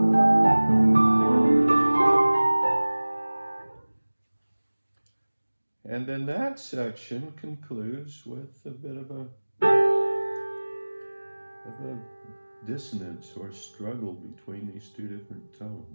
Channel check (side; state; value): both; inverted; correlation -1.00